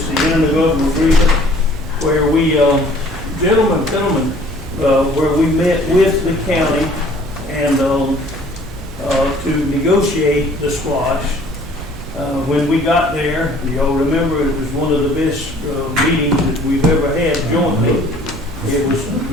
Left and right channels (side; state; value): both; normal; correlation 0.54